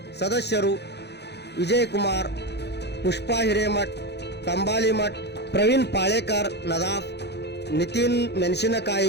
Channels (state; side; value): late; right; 0.49 ms